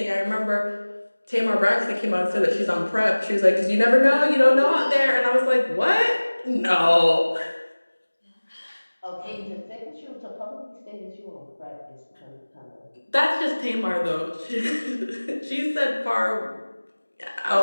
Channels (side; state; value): both; inverted; correlation -1.00